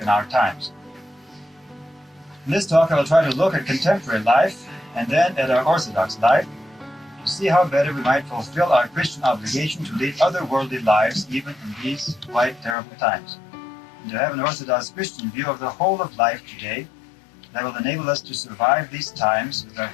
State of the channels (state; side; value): drops out; right; at 12.8 s